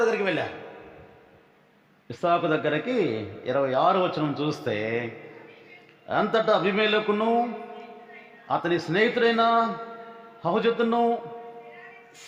దగ్గరికి వెళ్ళారు. ఇస్సాకు దగ్గరికి 26వ వచనం చూస్తే, అంతటా అబీమెలెకును అతని స్నేహితుడైన హుజతును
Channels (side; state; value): both; identical; correlation 1.00